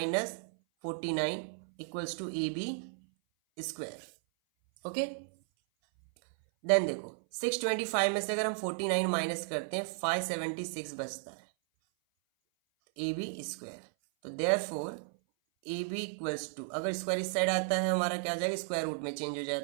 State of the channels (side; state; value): left; silent; 55 dB below the other